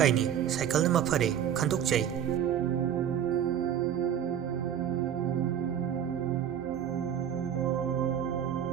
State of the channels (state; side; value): quieter; left; 9.4 dB